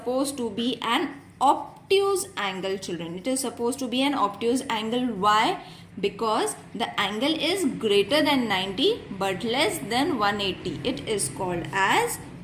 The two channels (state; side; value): identical; both; correlation 1.00